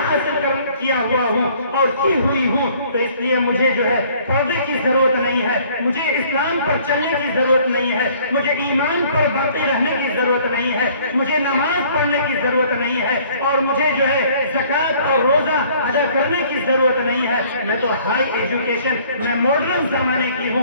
حاصل کیا ہوا ہوں اور کی ہوئی ہوں، تو اس لیے مجھے جو ہے پردے کی ضرورت نہیں ہے، مجھے اسلام پر چلنے کی ضرورت نہیں ہے، مجھے ایمان پر باقی رہنے کی ضرورت نہیں ہے، مجھے نماز پڑھنے کی ضرورت نہیں ہے، اور مجھے جو ہے زکوٰۃ اور روزہ ادا کرنے کی ضرورت نہیں ہے، میں تو ہائی ایجوکیشن، میں ماڈرن زمانے کی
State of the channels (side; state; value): both; inverted; correlation -0.57